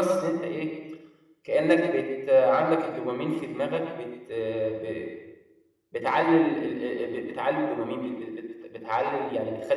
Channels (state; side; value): identical; both; correlation 1.00